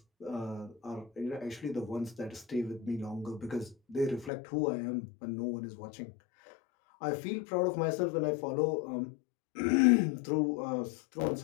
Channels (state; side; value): drops out; right; at 4.3 s